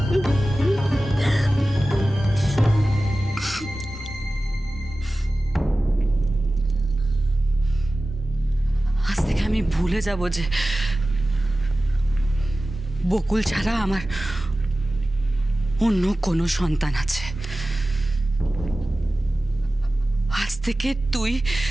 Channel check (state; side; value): normal; both; correlation 0.96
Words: আজ থেকে আমি ভুলে যাব যে বকুল ছাড়া আমার অন্য কোনো সন্তান আছে। আজ থেকে তুই